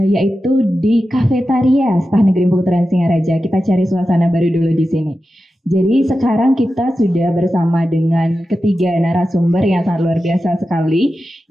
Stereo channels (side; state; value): both; normal; correlation 0.92